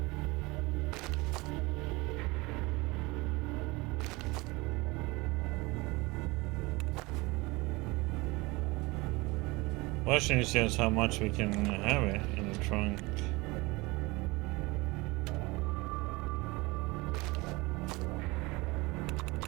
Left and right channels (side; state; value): left; quieter; 23.4 dB